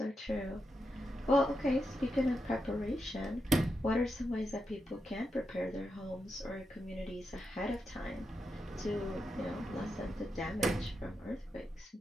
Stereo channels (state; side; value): normal; both; correlation 0.85